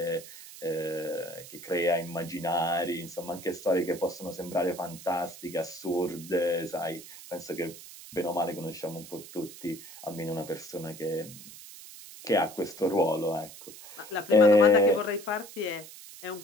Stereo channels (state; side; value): noise; right; hiss, 16 dB below the sound